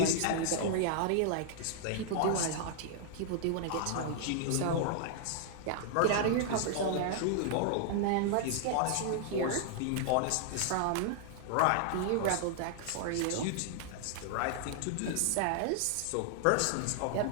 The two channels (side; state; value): both; different; correlation -0.01